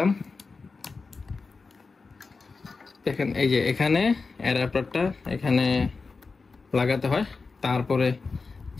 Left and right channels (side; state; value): right; quieter; 4.3 dB